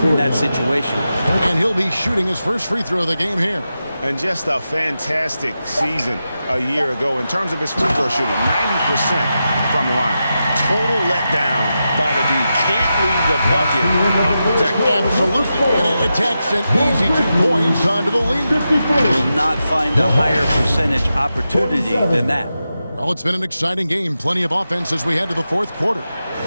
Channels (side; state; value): both; inverted; correlation -0.89